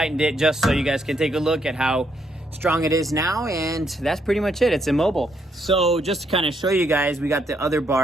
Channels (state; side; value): normal; both; correlation 0.75